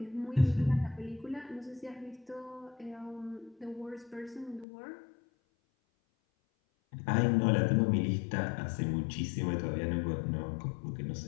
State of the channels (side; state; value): right; drops out; at 4.7 s